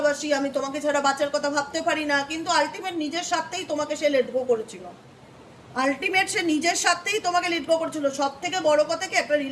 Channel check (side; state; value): both; identical; correlation 1.00